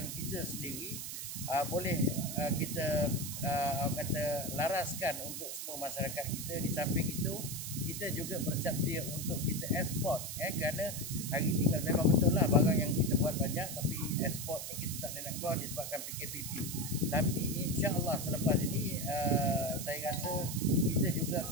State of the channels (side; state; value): right; noise; hiss, 6 dB below the sound